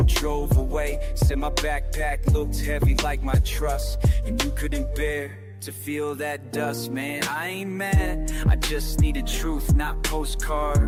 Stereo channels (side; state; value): both; identical; correlation 1.00